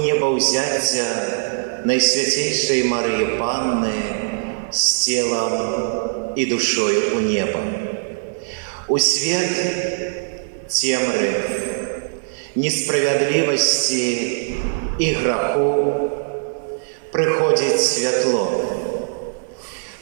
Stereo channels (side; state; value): left; silent; 65 dB below the other